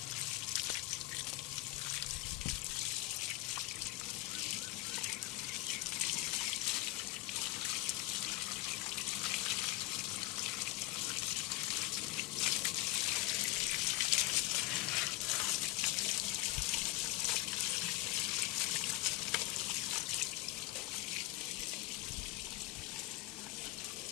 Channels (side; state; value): right; quieter; 18.0 dB